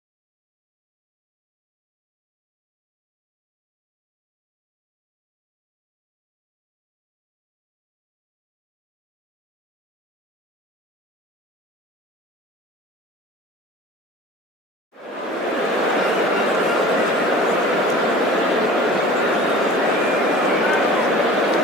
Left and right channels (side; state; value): both; normal; correlation 0.42